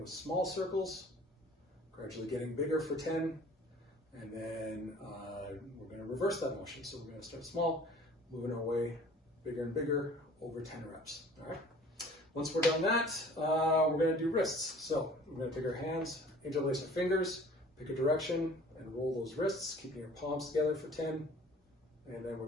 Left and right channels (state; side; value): normal; both; correlation 0.49